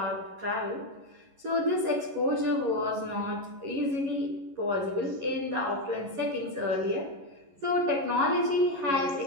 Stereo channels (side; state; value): left; late; 11 ms